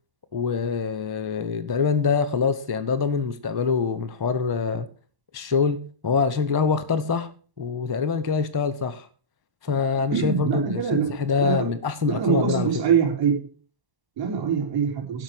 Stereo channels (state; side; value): late; left; 1.1 ms